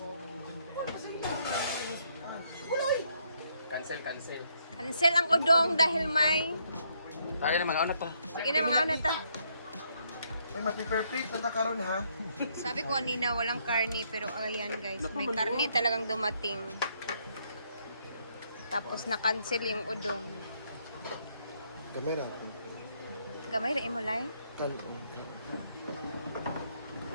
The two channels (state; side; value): inverted; both; correlation -0.72